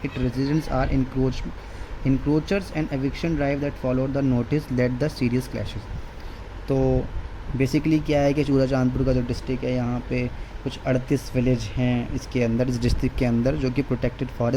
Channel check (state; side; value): identical; both; correlation 1.00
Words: it residents are encroachers and eviction drive that followed the notice led the serious clashes। तो basically क्या है कि चूराचांदपुर का जो district है यहाँ पे कुछ 38 विलेज हैं इसके अंदर, इस डिस्ट्रिक्ट के अंदर, जो कि प्रोटेक्टेड